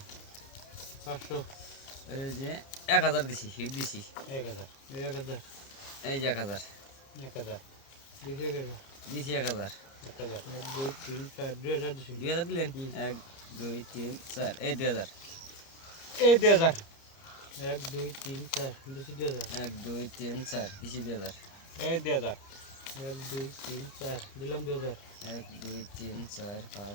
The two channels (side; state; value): right; late; 29 ms